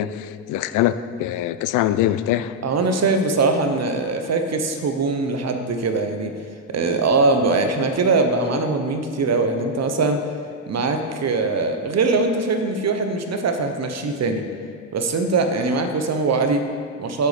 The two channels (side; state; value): both; normal; correlation -0.05